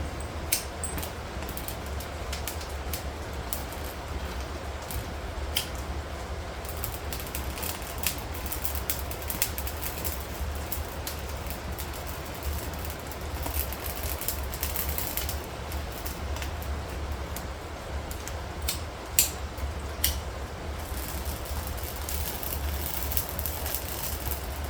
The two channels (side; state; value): both; identical; correlation 1.00